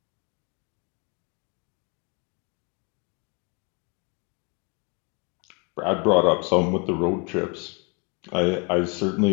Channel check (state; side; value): quieter; right; 33.1 dB